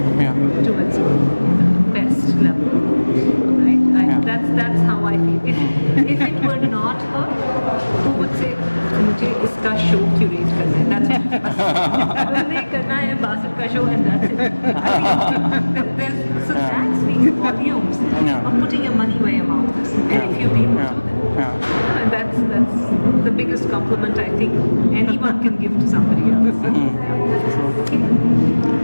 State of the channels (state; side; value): inverted; both; correlation -1.00